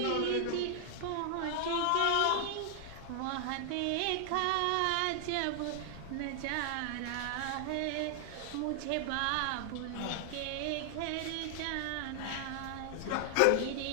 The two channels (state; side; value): different; both; correlation 0.00